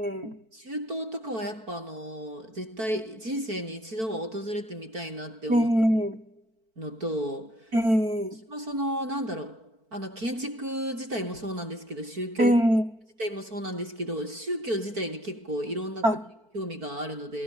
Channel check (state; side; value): late; left; 4.5 ms